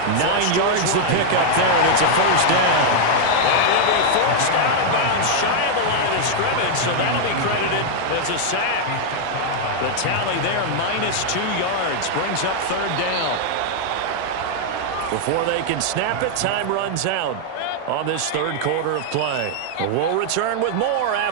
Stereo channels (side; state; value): both; different; correlation 0.00